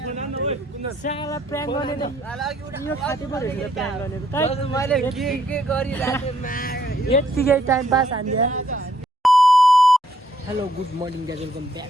फोन हान्न ओए कुन्दन साला प्र्याङ्क गर्ने त यो खाते पो रहेछ प्र्याङ्क गर्ने त मैले के गरिरहेको यत्तिकै टाइम पास हान्दिया hello good morning guys welcome back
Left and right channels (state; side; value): normal; both; correlation 0.69